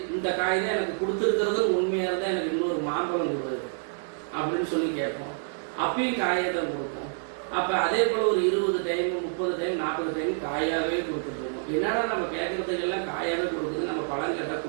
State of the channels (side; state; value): left; silent; 59 dB below the other